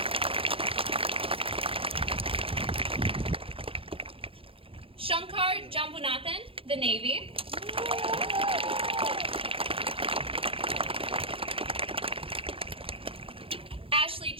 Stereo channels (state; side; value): late; left; 0.27 ms